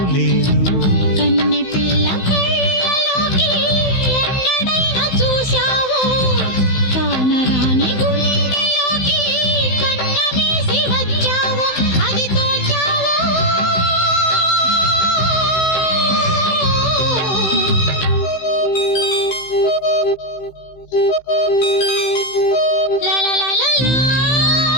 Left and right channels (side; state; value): right; late; 16 ms